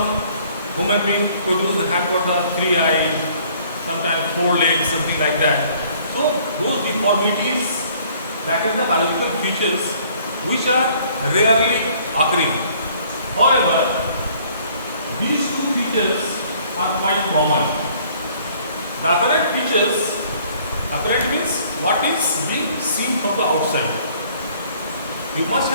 human being have got the 3 eyes, sometimes 4 legs, something like that. So those deformities, that is the biological features which are rarely occurring. However, these two features are quite common. The apparent features, apparent means what is being seen from the outside. You must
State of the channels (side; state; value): both; inverted; correlation -0.58